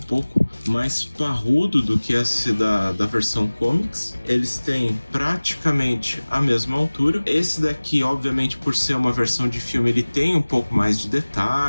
mais parrudo do que esse da versão comics. Eles têm praticamente a mesma altura. Esse daqui, obviamente, por ser uma versão de filme, ele tem um pouco mais de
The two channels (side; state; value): both; inverted; correlation -1.00